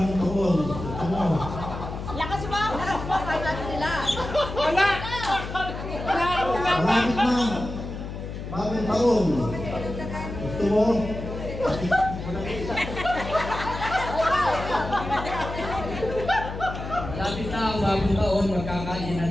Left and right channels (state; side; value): noise; left; hum, 8 dB below the sound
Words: ang taon? Lakas mo! Lakas mo! Kaya natin nila! Wala! Malapit na! Bagong taon! Gusto mo? Malapit na ang bagong taon, magkakainan